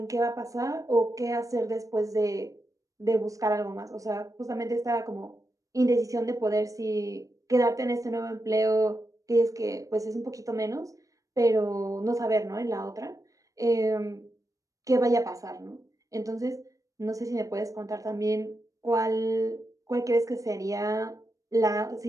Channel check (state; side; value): late; left; 0.16 ms